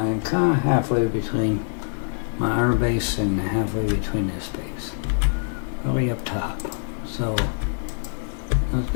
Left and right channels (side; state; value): right; silent; digital silence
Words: kind of halfway between my iron base and halfway between this base. Really up top. So let's